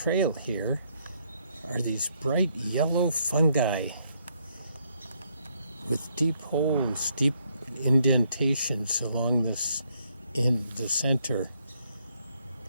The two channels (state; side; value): inverted; both; correlation -0.72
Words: here are these bright yellow fungi with deep holes, deep indentations along this in the center.